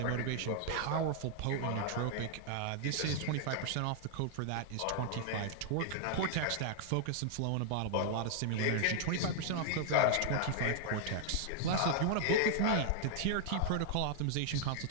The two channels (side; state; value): both; different; correlation 0.00